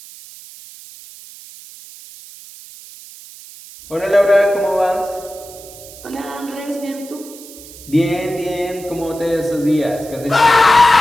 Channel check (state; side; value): noise; right; hiss, 18 dB below the sound